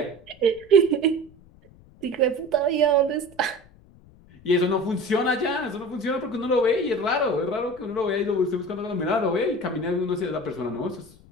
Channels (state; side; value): noise; left; rumble, 25 dB below the sound